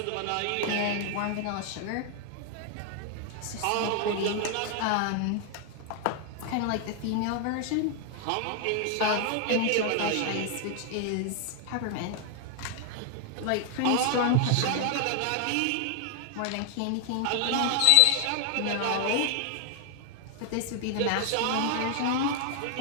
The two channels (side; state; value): both; different; correlation 0.00